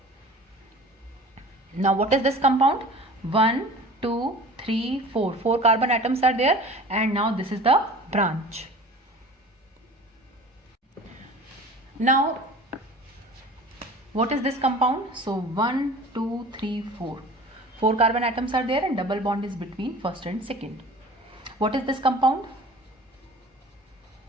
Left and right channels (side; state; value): both; normal; correlation 0.42